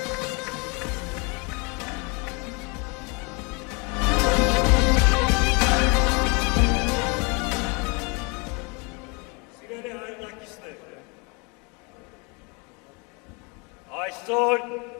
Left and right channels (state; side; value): quieter; right; 30.9 dB